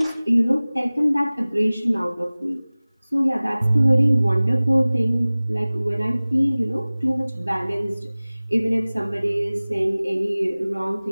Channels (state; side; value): inverted; both; correlation -0.99